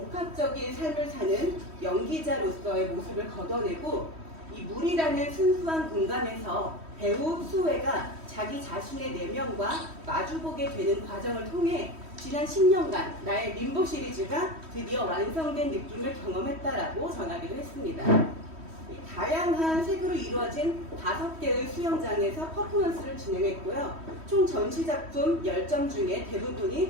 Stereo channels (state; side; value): late; left; 3.1 ms